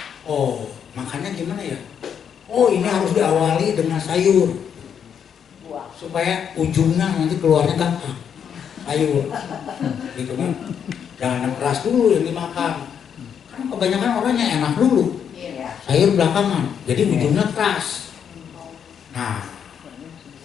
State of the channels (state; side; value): quieter; right; 7.9 dB